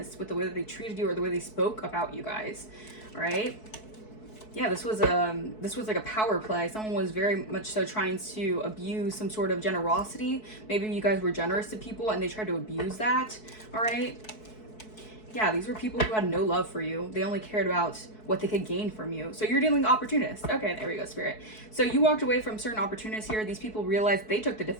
with the way that they treated you or the way they spoke about you guys. All right, yeah, this was like a power play. Someone was very much so trying to abuse some sort of generosity. Maybe you guys were generous to people and they tried to abuse that. All right, yeah, these were people who had no love for you. They only cared about what they could gain from you. So you're dealing with opportunists. Okay, there we go, Spirit. So you walked away from certain opportunists here. These people realized they took the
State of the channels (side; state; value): right; late; 4.6 ms